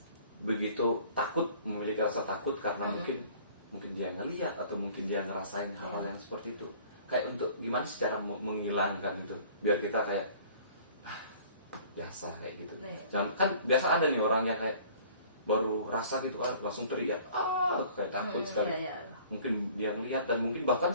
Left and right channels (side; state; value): both; inverted; correlation -0.51